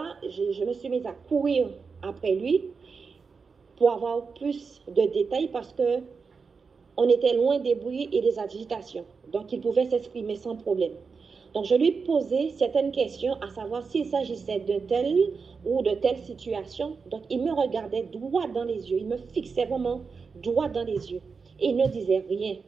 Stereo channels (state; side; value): quieter; left; 5.1 dB